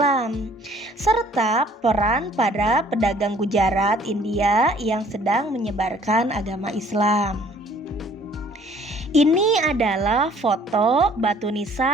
serta peran para pedagang Gujarat, India yang sedang menyebarkan agama Islam. Ini adalah foto batu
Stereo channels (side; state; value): both; normal; correlation 0.56